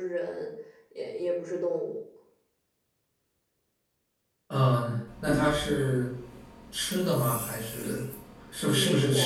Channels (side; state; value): both; identical; correlation 1.00